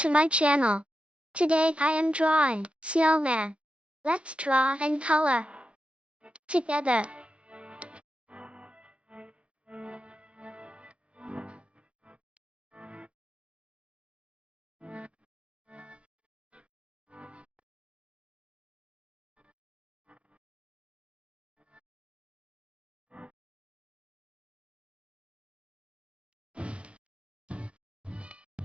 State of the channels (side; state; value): left; late; 0.060 ms